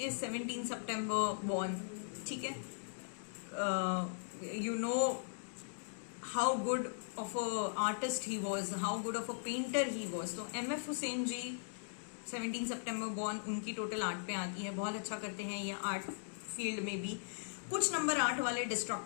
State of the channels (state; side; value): silent; right; digital silence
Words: 17 सितंबर बॉर्न। ठीक है, you know how good of a artist he was, how good of a painter he was. तो एमएफ हुसैन जी 17 सितंबर बॉर्न, उनकी टोटल 8 पे आती है, बहुत अच्छा करते हैं ये आर्ट फील्ड में भी। कुछ नंबर 8 वाले